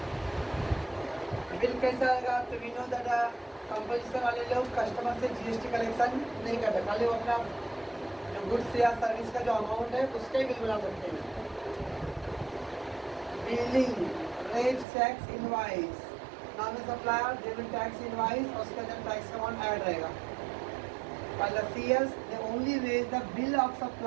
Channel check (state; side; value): drops out; left; at 14.9 s